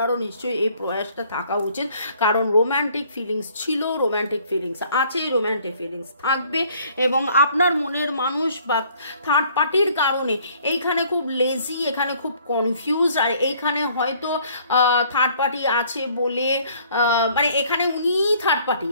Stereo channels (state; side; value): inverted; both; correlation -0.59